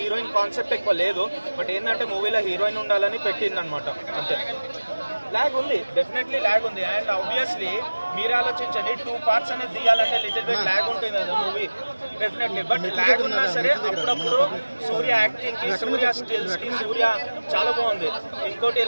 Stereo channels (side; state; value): both; inverted; correlation -1.00